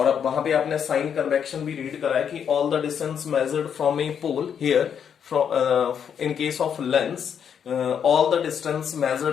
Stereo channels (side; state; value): right; quieter; 7.9 dB